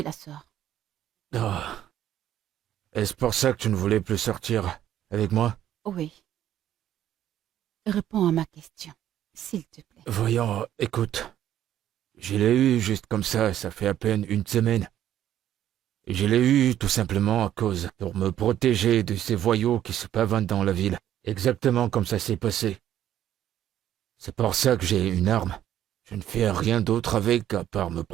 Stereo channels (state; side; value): quieter; left; 11.5 dB